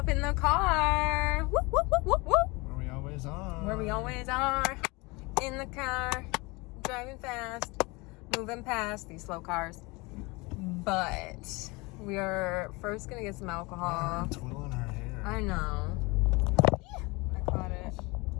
in the car. Whoop, whoop, whoop, whoop, whoop. Where we always are. Where we always are. In the car, driving fast, moving past these slow cars. But we are first gonna get some alcohol. Twirling her hair. I know. I caught it.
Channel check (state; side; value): quieter; right; 25.3 dB